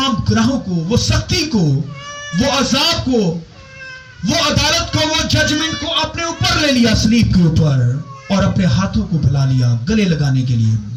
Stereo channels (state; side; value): identical; both; correlation 1.00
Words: گناہوں کو، وہ سختی کو، وہ عذاب کو، وہ عدالت کو، وہ ججمنٹ کو اپنے اوپر لے لیا صلیب کے اوپر، اور اپنے ہاتھوں کو پھیلا لیا گلے لگانے کے لیے۔